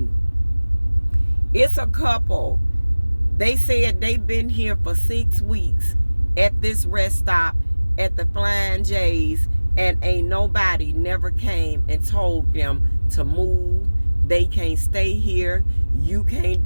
It's a couple. They said they've been here for 6 weeks at this rest stop at the Flying J's, and ain't nobody never came and told them to move. They can't stay here. You can't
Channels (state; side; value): inverted; both; correlation -1.00